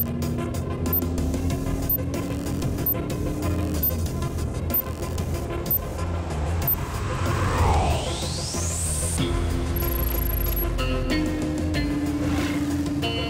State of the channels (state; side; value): identical; both; correlation 1.00